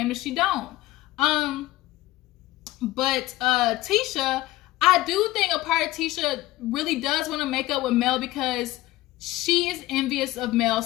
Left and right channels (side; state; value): right; quieter; 17.4 dB